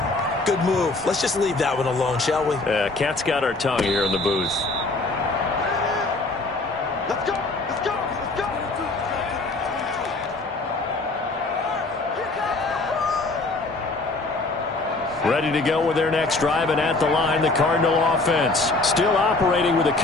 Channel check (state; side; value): quieter; right; 3.2 dB